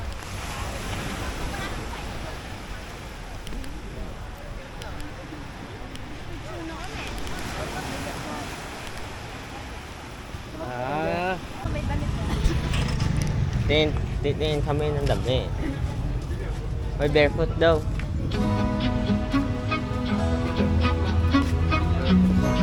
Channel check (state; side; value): identical; both; correlation 1.00